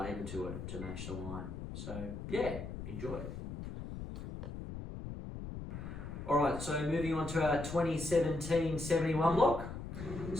to it to match the wine. So enjoy it. All right, so moving on to our 2017 71 block.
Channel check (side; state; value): left; noise; rumble, 8 dB below the sound